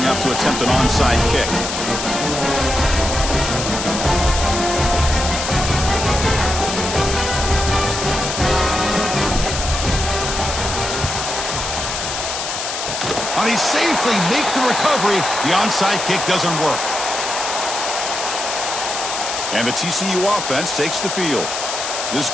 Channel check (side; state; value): left; noise; hiss, 4 dB below the sound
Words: up to attempt an onside kick. Oh, they safely make the recovery. The onside kick doesn't work. And the TCU offense takes the field. This